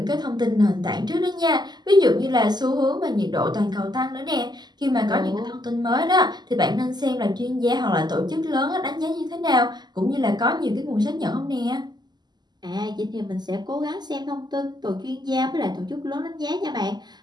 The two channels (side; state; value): left; late; 0.21 ms